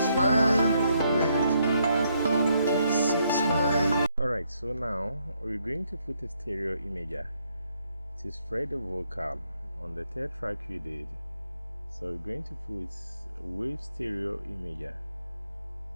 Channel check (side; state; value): both; inverted; correlation -0.74